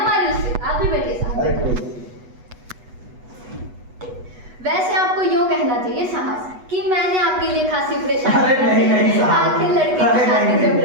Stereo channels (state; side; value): late; left; 8.1 ms